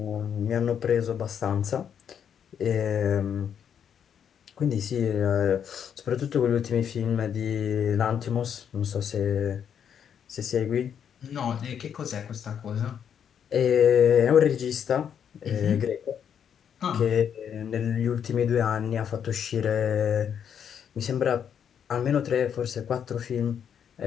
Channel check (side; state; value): right; quieter; 8.3 dB